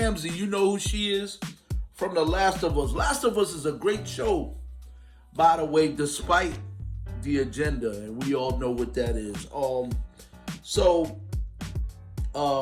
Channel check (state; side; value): identical; both; correlation 1.00